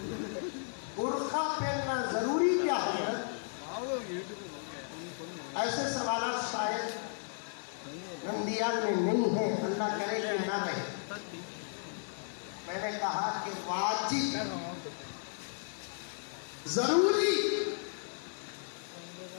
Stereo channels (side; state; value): right; silent; 55 dB below the other